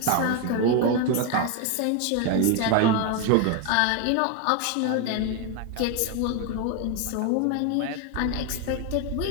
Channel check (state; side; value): different; both; correlation 0.01